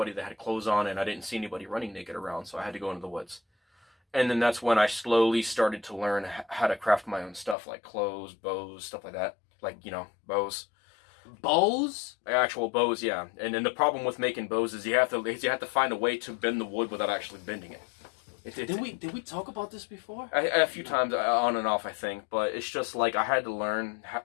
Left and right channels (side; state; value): right; drops out; at 7.6 s